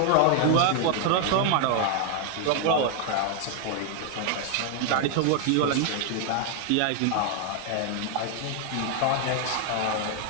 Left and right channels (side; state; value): both; different; correlation 0.00